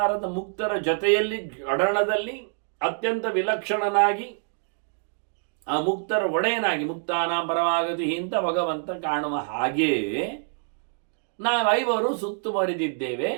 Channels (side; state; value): left; silent; 61 dB below the other